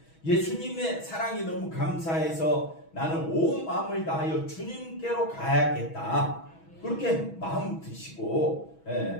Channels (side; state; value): right; late; 6.2 ms